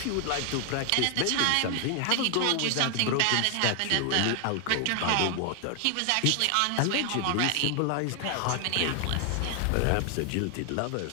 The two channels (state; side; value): different; both; correlation 0.00